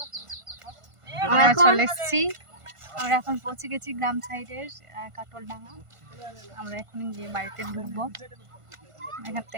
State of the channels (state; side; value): late; left; 1.5 ms